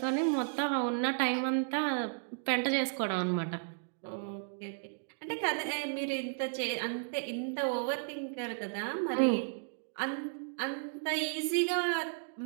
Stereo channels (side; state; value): left; silent; digital silence